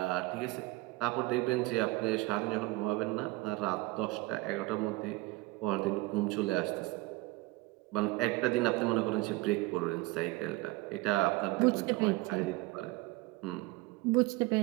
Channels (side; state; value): left; quieter; 21.3 dB